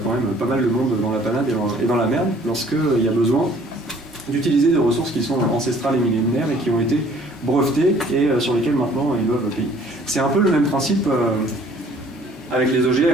quand même pas mal de monde dans la panade et dans la merde lorsqu'il y a besoin d'utiliser des ressources qui sont ancestrales et millénaires et qui ont été brevetées et sur lesquelles maintenant ils doivent payer. C'est un peu le même principe avec les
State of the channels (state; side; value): normal; both; correlation 0.56